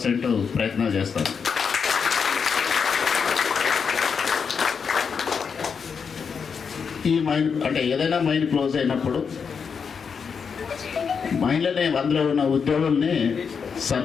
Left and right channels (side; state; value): right; quieter; 6.1 dB